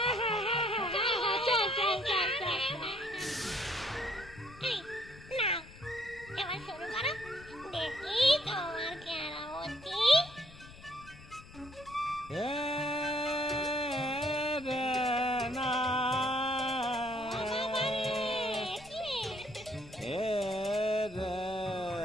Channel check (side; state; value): left; noise; rumble, 19 dB below the sound